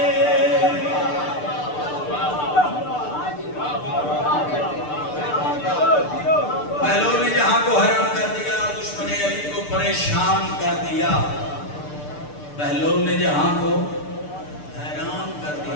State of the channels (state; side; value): late; right; 6.7 ms